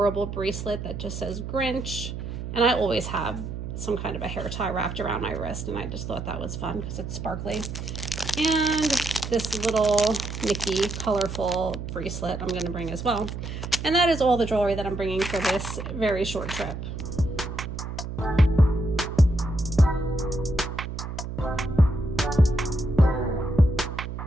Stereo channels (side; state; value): right; noise; hum, 7 dB below the sound